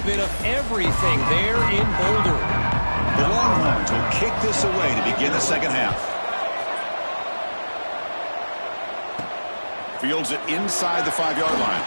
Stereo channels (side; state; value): both; inverted; correlation -1.00